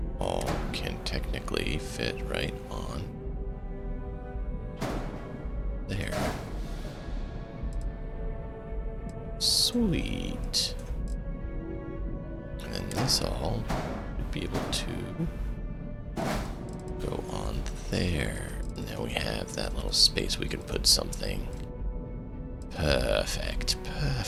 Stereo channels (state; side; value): identical; both; correlation 1.00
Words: all can technically fit right on there. Sweet. And then this all would be able to go on there. And now we have that little space we can put something. Perfect,